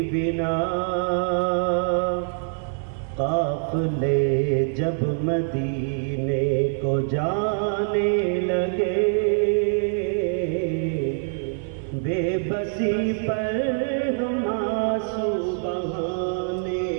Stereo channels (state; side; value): silent; left; 56 dB below the other